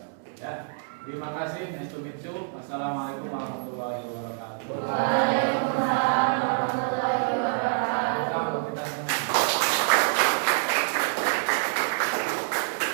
Ya, terima kasih. Nice to meet you. Assalamualaikum warahmatullahi wabarakatuh. Waalaikumsalam warahmatullahi wabarakatuh.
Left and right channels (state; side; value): silent; left; digital silence